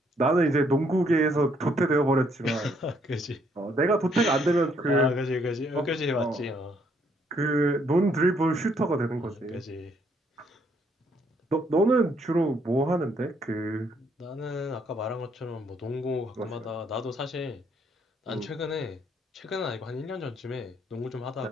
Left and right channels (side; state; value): both; normal; correlation 0.69